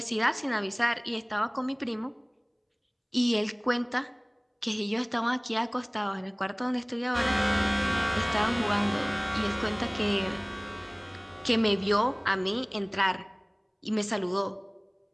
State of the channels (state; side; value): identical; both; correlation 1.00